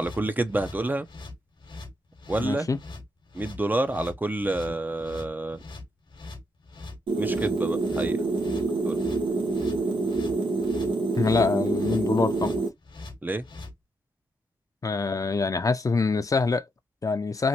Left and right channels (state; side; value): normal; both; correlation 0.78